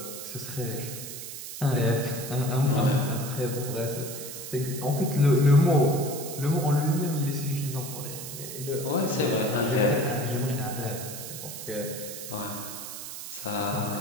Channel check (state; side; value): noise; right; hiss, 9 dB below the sound